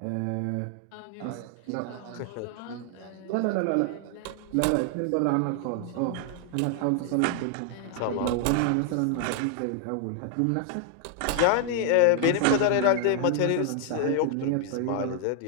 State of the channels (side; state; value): both; different; correlation 0.00